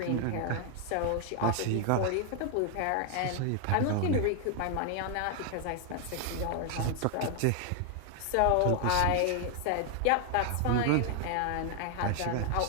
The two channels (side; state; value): both; different; correlation 0.00